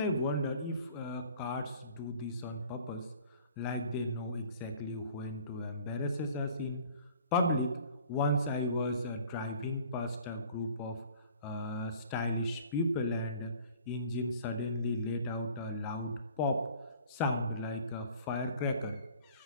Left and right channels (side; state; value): both; inverted; correlation -0.49